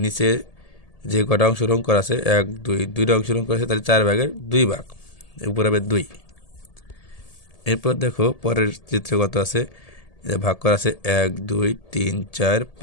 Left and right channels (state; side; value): late; right; 1.8 ms